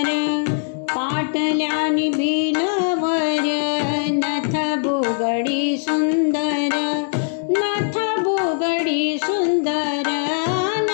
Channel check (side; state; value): right; silent; digital silence